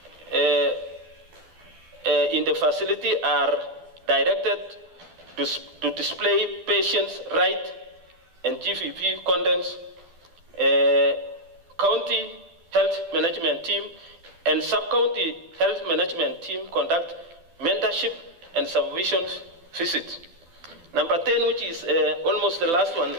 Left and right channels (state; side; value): late; left; 12 ms